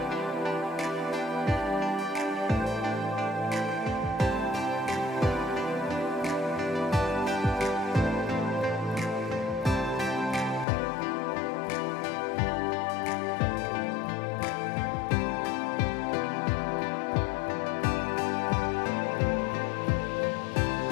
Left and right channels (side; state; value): right; drops out; at 10.7 s